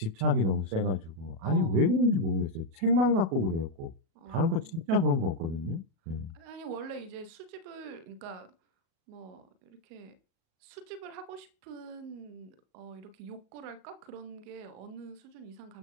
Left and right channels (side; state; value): left; late; 37 ms